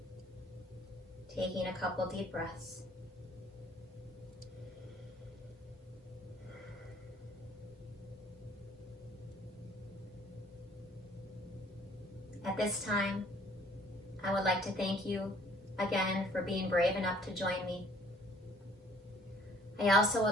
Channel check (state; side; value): normal; both; correlation 0.58